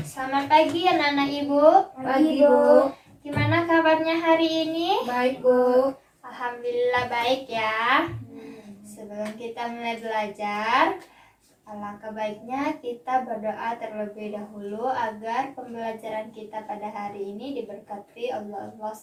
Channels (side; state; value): both; identical; correlation 1.00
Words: Selamat pagi anak-anak Ibu. Pagi, Bu. Gimana kabarnya hari ini? Baik, Bu. Alhamdulillah baik ya. Sebelum kita mulai belajar, alangkah baiknya kita berdoa terlebih dahulu agar pembelajaran kita pada hari ini diberkati Allah